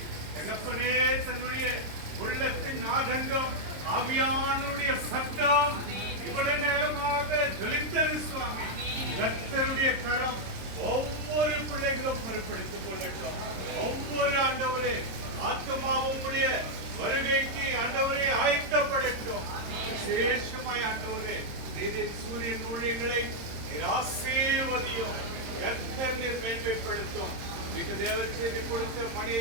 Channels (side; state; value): left; late; 26 ms